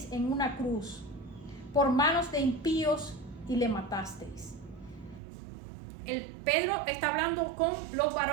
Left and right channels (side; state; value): left; drops out; at 5.2 s